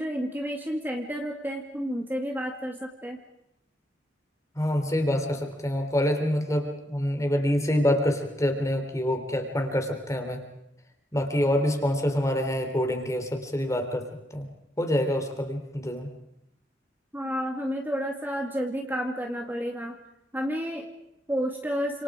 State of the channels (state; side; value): normal; both; correlation 0.78